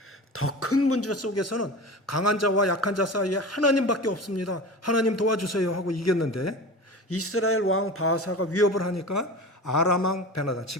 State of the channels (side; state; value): both; normal; correlation 0.32